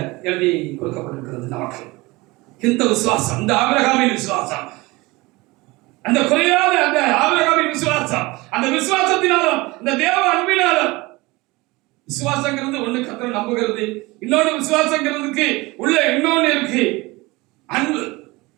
எழுதி கொடுக்கப்பட்டிருக்கிறது நமக்கு. இந்த விசுவாசம், இந்த ஆபிரகாமின் விசுவாசம், அந்த குறையாத அந்த ஆபிரகாமின் விசுவாசம், அந்த விசுவாசத்தினாலும் இந்த தேவ அன்பினாலும், விசுவாசங்கிறது ஒண்ணு கர்த்தரை நம்புகிறது, இன்னொன்னு விசுவாசங்கிறதுக்கு உள்ள இன்னொன்னு இருக்கு அன்பு.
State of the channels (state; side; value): quieter; left; 22.5 dB